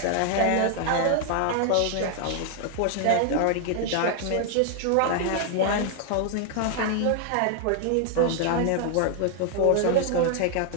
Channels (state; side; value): different; both; correlation 0.00